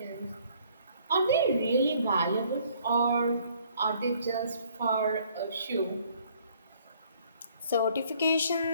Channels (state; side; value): inverted; both; correlation -0.61